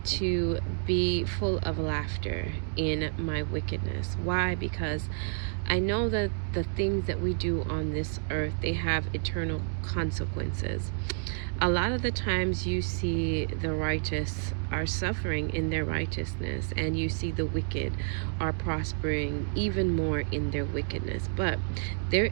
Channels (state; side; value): silent; left; 58 dB below the other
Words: to be full of laughter in my wickedness. Why? Because I know that the things that we do on this earth, they have eternal consequences. A lot of the times you see the righteous are suffering in their righteousness, and you see the wicked are prospering even more in their wickedness. But there